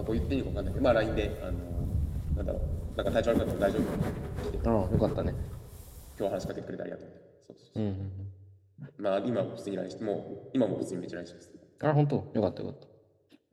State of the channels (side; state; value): both; identical; correlation 1.00